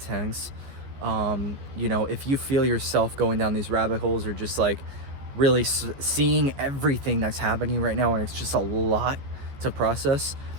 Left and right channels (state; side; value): late; left; 14 ms